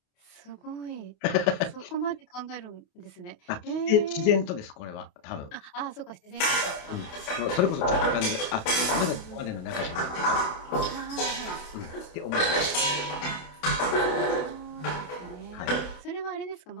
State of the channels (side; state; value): right; late; 28 ms